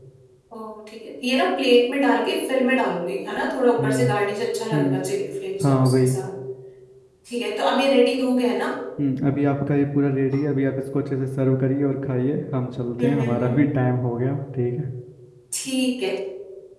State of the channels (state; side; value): identical; both; correlation 1.00